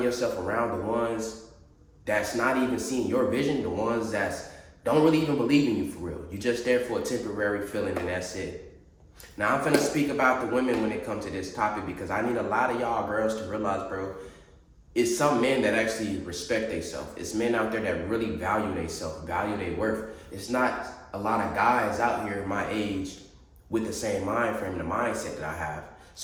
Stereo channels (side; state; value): both; identical; correlation 1.00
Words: yourself around the ones that's not even seeing your vision, the ones that don't really even believe in you for real. You're just there for a temporary feeling and that's it. Now I'm finna speak about the women when it comes to this topic because I need a lot of y'all girls to realize, bro, it's some men that actually respect themselves. It's men out there that really value themselves, value their worth. It's not a lot of guys out here my age with the same mind frame and the mindset that I have.